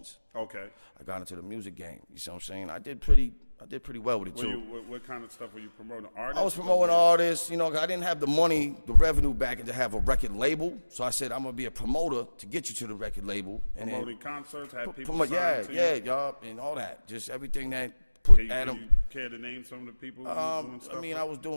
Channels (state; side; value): inverted; both; correlation -1.00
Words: Okay. I got into the music game. You see what I'm saying? I did pretty well with it too. What kind of stuff were you promoting? Artists? I was promoting artists. You know, I didn't have the money, the revenue back to have a record label. So I said, I'm gonna be a promoter to get you to the record label. And promoting concerts, had people y'all, and all that. Just everything that put Adam. Can you care to name some of the people? Doing stuff I was